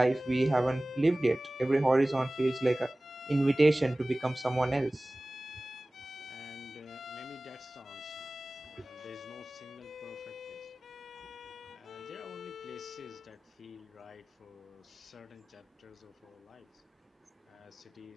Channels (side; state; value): both; normal; correlation 0.98